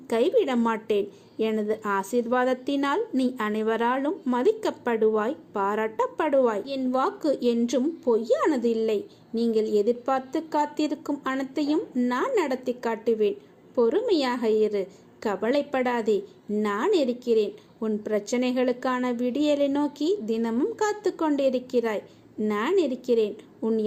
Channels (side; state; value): both; identical; correlation 1.00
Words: கைவிட மாட்டேன். எனது ஆசீர்வாதத்தினால் நீ அனைவராலும் மதிக்கப்படுவாய், பாராட்டப்படுவாய். என் வாக்கு என்றும் பொய்யானது இல்லை. நீங்கள் எதிர்பார்த்து காத்திருக்கும் அனைத்தையும் நான் நடத்தி காட்டுவேன். பொறுமையாக இரு, கவலைப்படாதே. நான் இருக்கிறேன். உன் பிரச்சனைகளுக்கான விடியலை நோக்கி தினமும் காத்து கொண்டிருக்கிறாய். நான் இருக்கிறேன். உன்